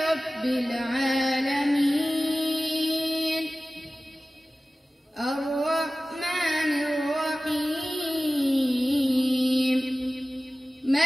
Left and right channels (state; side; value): normal; both; correlation 0.96